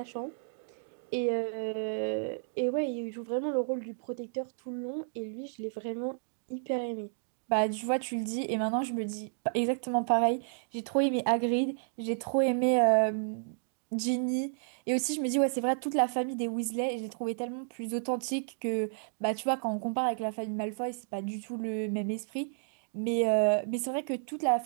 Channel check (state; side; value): silent; left; digital silence